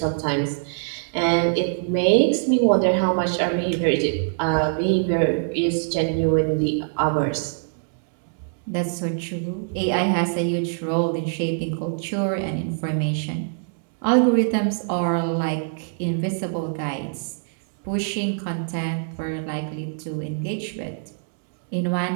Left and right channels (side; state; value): left; silent; digital silence